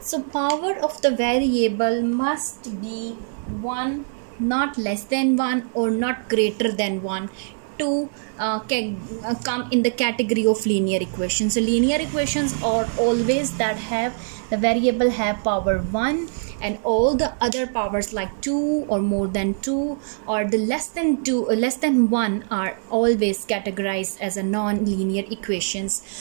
So power of the variable must be 1, not less than 1 or not greater than 1 to come in the category of linear equations. So linear equations are always that have the variable have power 1, and all the other powers like 2 or more than 2 or the less than 1 are always categorized as a non-linear equations.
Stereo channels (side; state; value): left; silent; digital silence